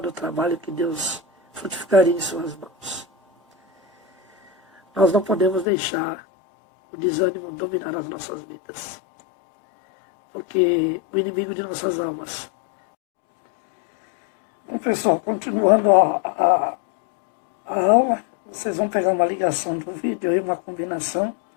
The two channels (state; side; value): drops out; right; at 5.7 s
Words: o trabalho que Deus frutificaria em suas mãos. Nós não podemos deixar o desânimo dominar as nossas vidas. Porque o inimigo de nossas almas. Bom, pessoal, continuando a aula, vocês vão pegar uma ligação do vídeo aí, uma combinação,